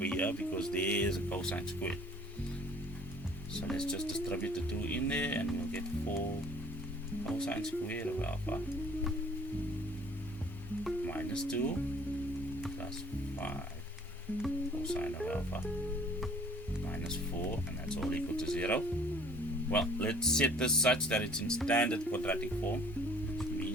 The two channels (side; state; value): both; normal; correlation 0.54